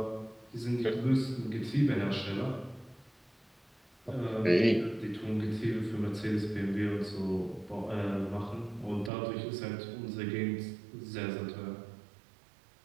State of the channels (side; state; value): left; drops out; at 9.1 s